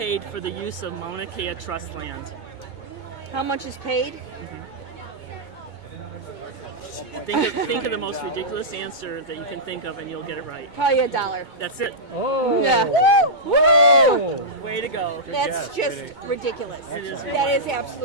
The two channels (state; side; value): late; right; 2.2 ms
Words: for the use of Mauna Kea Trust land? How much is paid? Think of the most ridiculous answer that you can think of, and you'll get it right. Probably $1. That's it. Oh. Yeah. Woo! Way to go. That's just ridiculous. It is That is